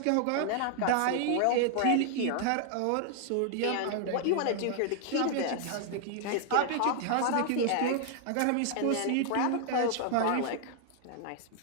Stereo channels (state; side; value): different; both; correlation 0.00